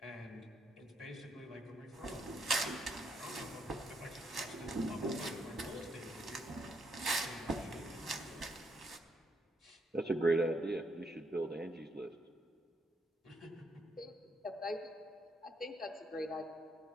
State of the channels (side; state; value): both; normal; correlation 0.75